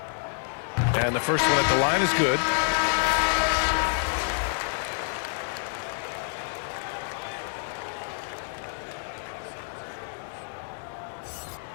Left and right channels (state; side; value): silent; right; 60 dB below the other